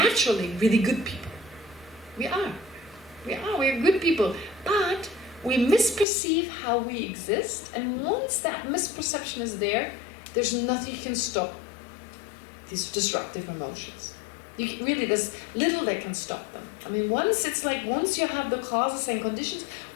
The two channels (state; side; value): drops out; right; at 6.1 s